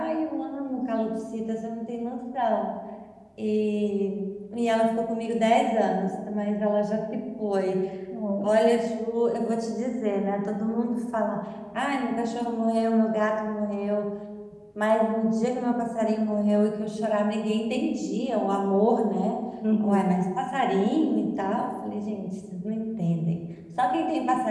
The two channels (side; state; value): both; identical; correlation 1.00